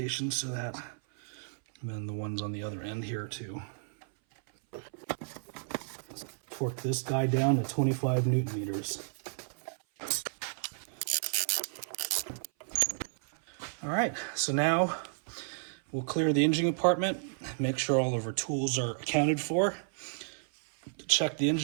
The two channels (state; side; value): silent; left; 56 dB below the other